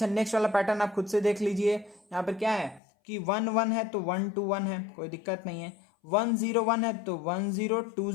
नेक्स्ट वाला पैटर्न आप खुद से देख लीजिए, यहाँ पर क्या है कि 1 1 है तो 1 to 1 है, कोई दिक्कत नहीं है। 1 0 1 है तो 1 0 2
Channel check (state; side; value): drops out; right; at 2.8 s